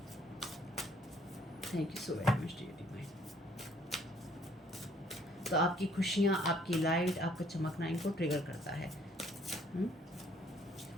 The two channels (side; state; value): both; normal; correlation 0.62